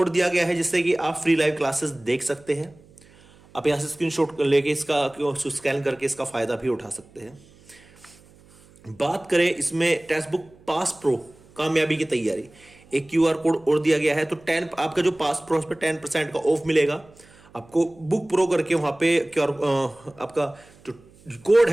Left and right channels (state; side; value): noise; right; hum, 27 dB below the sound